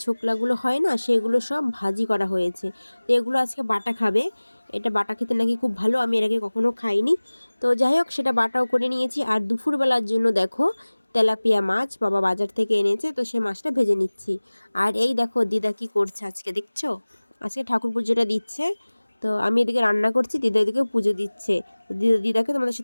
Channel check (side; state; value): both; inverted; correlation -1.00